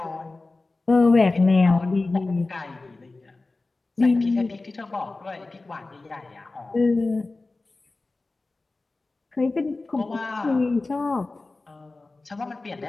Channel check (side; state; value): right; quieter; 3.3 dB